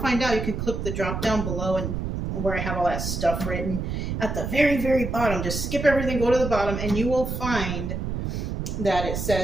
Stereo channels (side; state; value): right; noise; rumble, 3 dB below the sound